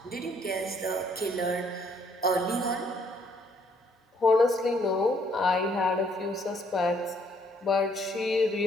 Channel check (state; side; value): normal; both; correlation 0.67